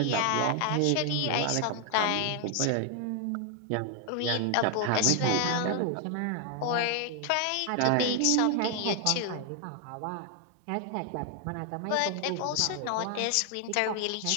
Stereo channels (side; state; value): both; different; correlation 0.00